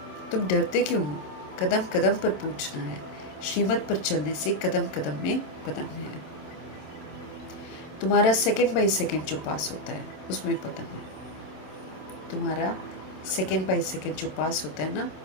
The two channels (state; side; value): late; right; 27 ms